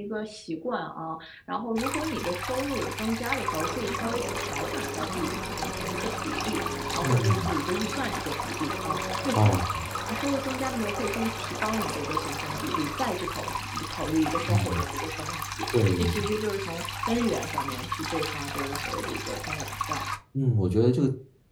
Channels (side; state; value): both; identical; correlation 1.00